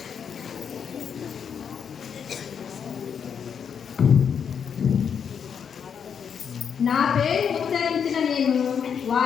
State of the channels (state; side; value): quieter; right; 7.2 dB